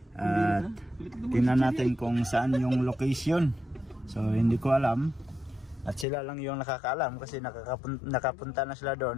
At tingnan natin kung saan yung location. So hindi ko alam. At sila lang yung nakakaalam kasi nakapunta na sila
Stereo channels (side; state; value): right; drops out; at 6.1 s